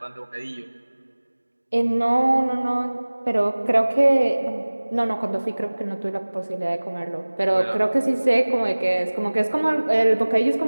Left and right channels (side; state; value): both; inverted; correlation -1.00